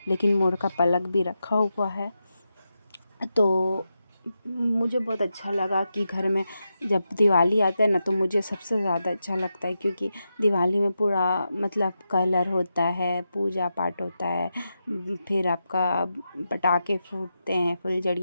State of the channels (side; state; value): both; inverted; correlation -0.88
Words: लेकिन मोर का पलक भी रखा हुआ है। तो मुझे बहुत अच्छा लगा कि घर में जब दिवाली आता है ना, तो मुझे सबसे ज़्यादा अच्छा लगता है, क्योंकि दिवाली में पूरा मतलब कलर होता है, पूजा पाठ होता है, फिर आपका पटाखे फूटते हैं,